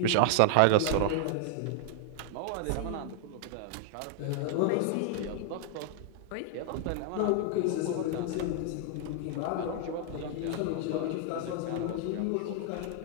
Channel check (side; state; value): both; different; correlation 0.00